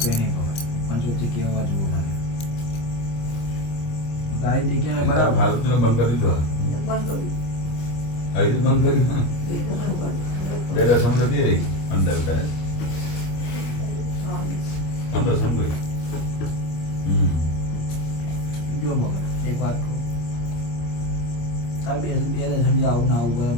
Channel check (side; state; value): right; late; 25 ms